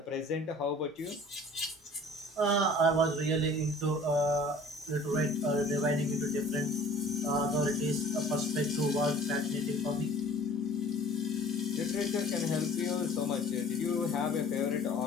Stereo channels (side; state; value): both; normal; correlation 0.48